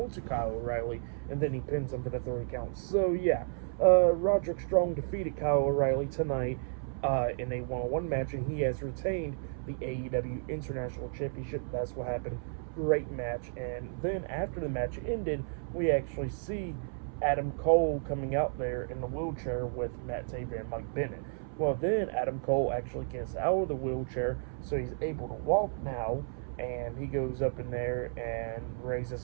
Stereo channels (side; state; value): left; silent; 56 dB below the other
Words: Kyle O'Reilly, and then he pins him for the 3 count. So yeah, Roderick Strong defeated Kyle O'Reilly tonight in a one-on-one match, and he has retained the AEW International Championship. That's what happened. Great match. And then after the match ended, we actually see Adam Cole coming out there in the wheelchair with Matt Taven and Mike Bennett. Well, then Adam Cole actually gets out of the wheelchair, so he's able to walk now, and he goes up in there and